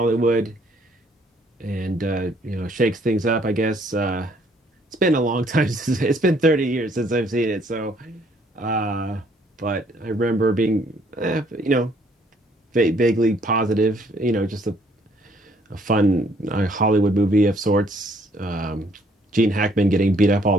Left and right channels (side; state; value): both; normal; correlation 0.64